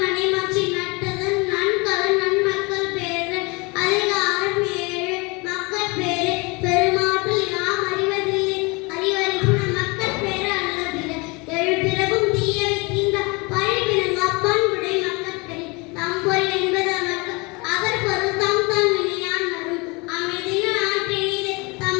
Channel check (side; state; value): right; quieter; 27.6 dB